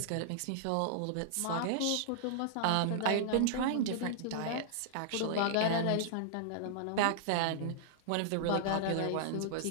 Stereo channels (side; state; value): both; different; correlation -0.01